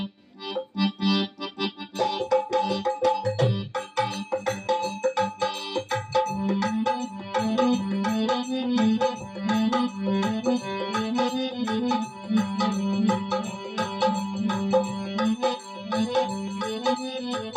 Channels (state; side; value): identical; both; correlation 1.00